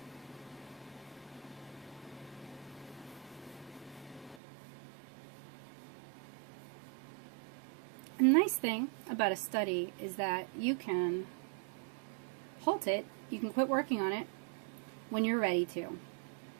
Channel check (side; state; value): left; drops out; at 4.4 s